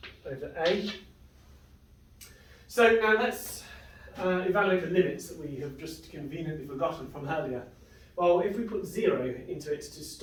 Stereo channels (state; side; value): identical; both; correlation 1.00